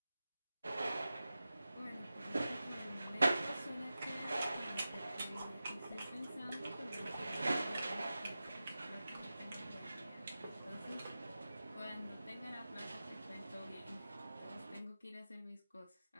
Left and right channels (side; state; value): both; inverted; correlation -0.94